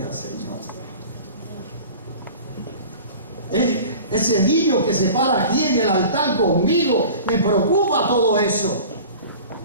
Señor. Ese niño que se para aquí en el altar conmigo, me preocupa todo eso.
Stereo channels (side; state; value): both; inverted; correlation -0.40